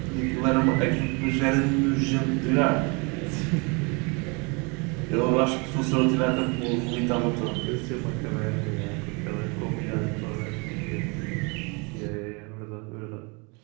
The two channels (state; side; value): quieter; left; 30.8 dB